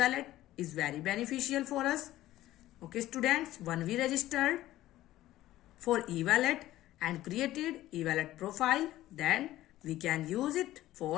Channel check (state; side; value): quieter; right; 15.1 dB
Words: is very beneficial for us. Okay, students, when we registered for e-wallet and created e-wallet profile, then we can use it